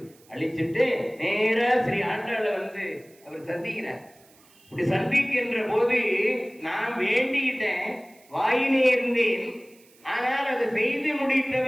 அழிச்சிட்டு நேரா ஸ்ரீ ஆண்டாளை வந்து அவர் சந்திக்கிறார். இப்படி சந்திக்கின்ற போது நான் வேண்டிக்கிட்டேன், வாயினே இருந்தேன், ஆனால் அதை செய்து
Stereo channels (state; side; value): noise; right; hiss, 28 dB below the sound